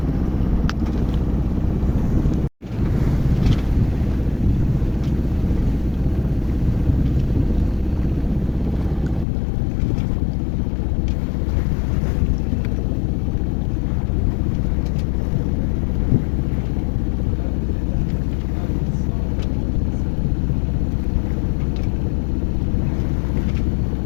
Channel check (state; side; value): drops out; right; at 9.2 s